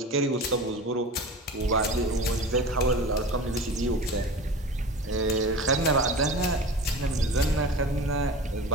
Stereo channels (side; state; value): both; normal; correlation 0.34